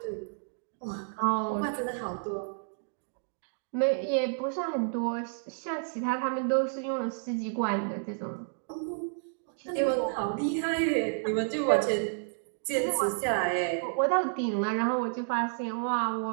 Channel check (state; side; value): silent; left; digital silence